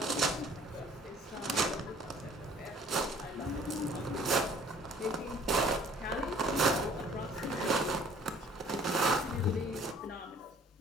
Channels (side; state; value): both; normal; correlation 0.54